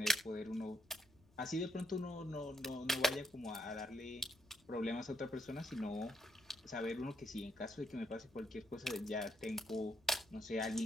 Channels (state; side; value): noise; left; rumble, 29 dB below the sound